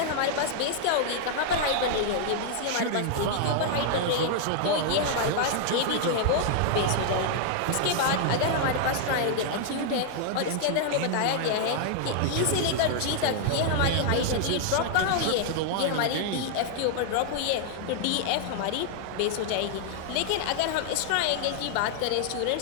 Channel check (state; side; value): different; both; correlation -0.01